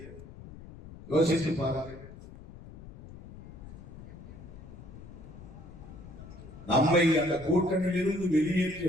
யோசித்து பாருங்க. நம்மை அந்த கூட்டணியில் இருந்து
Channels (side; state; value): left; noise; rumble, 15 dB below the sound